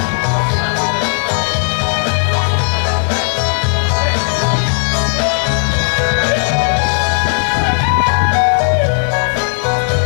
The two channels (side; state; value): right; silent; digital silence